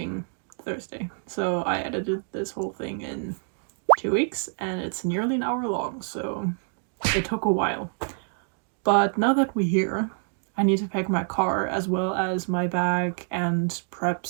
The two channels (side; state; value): left; silent; 60 dB below the other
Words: Thursday, so I edited this whole thing in 2 weeks and it's nearly an hour long, so it took a while. But now that we're here, I need to pack my car as well as my bag and prep